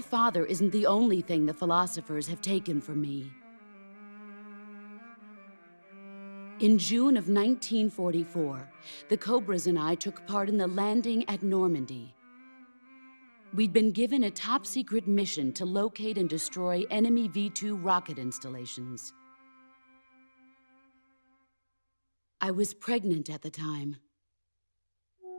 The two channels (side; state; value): both; inverted; correlation -1.00